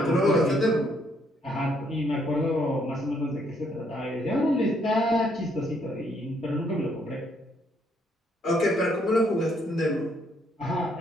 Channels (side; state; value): both; normal; correlation 0.70